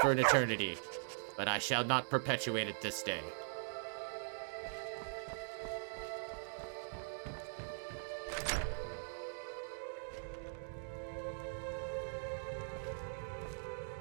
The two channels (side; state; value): left; silent; digital silence